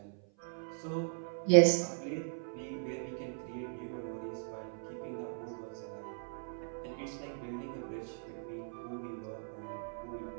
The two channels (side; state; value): left; silent; 52 dB below the other